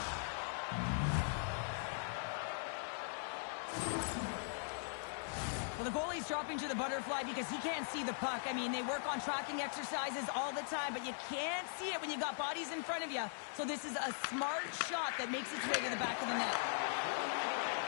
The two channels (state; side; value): silent; right; 51 dB below the other